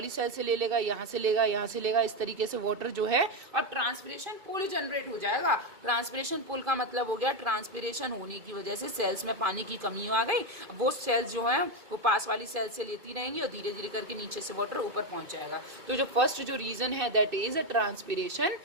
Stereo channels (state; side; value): late; left; 2.5 ms